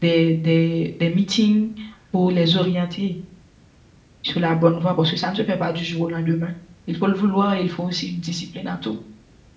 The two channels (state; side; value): identical; both; correlation 1.00